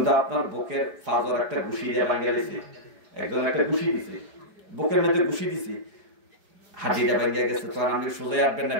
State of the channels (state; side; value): late; left; 4.9 ms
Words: আপনার বুকের ফাজর একটা ঘুষি দিয়ে ভাঙে গেছে, একজন একটা ঘুষি দিছে, বুকের মধ্যে ঘুষি দিছে, হাতিটা ভাঙ্গা গেছে, তখন আপনি সোজাই আসবেন না